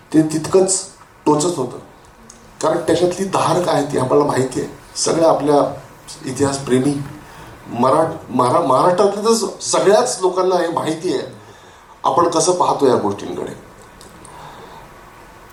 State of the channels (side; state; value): both; identical; correlation 1.00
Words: ते तितकंच टोचत होतं. कारण त्याच्यातली धार काय ती आम्हाला माहिती आहे. सगळ्या आपल्या इतिहासप्रेमी महाराष्ट्रातल्या तर सगळ्याच लोकांना हे माहिती आहे आपण कसं पाहतो या गोष्टींकडे.